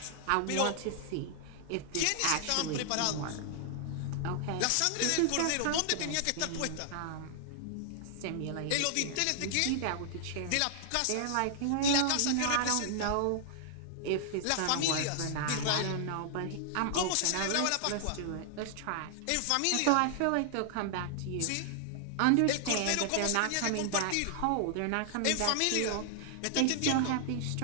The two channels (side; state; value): both; different; correlation 0.00